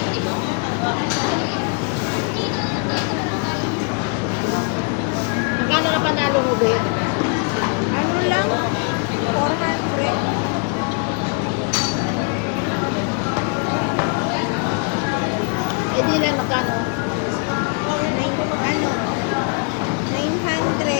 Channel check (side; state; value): right; quieter; 37.6 dB